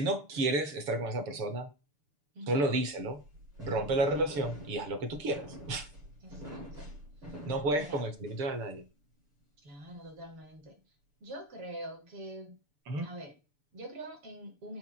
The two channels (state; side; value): late; left; 6.9 ms